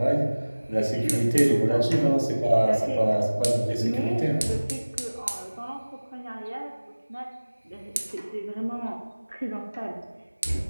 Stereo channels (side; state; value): both; inverted; correlation -1.00